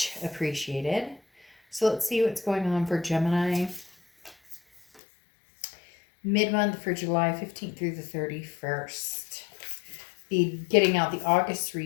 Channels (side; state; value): right; drops out; at 5.0 s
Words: appreciated. So let's see what's going on for Gemini mid-month for July 15th through the 31st. Be getting out the August